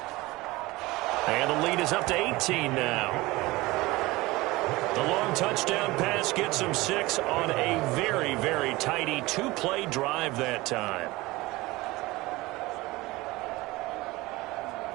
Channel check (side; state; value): left; quieter; 20.7 dB